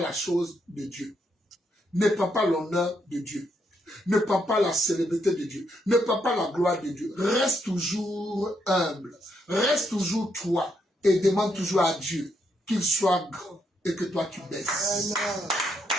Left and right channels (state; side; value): normal; both; correlation 0.77